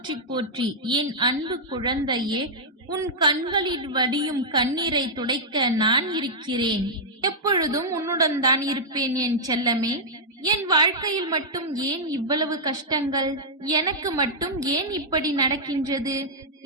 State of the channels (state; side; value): normal; both; correlation -0.08